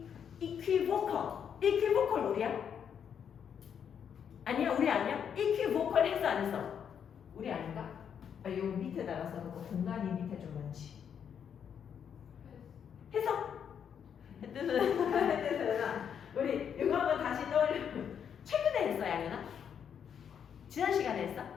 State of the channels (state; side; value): quieter; right; 8.0 dB